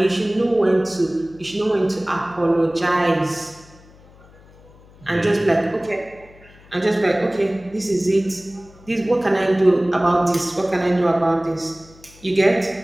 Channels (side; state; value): left; noise; hum, 25 dB below the sound